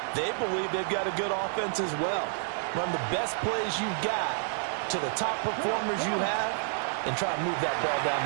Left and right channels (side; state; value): left; silent; digital silence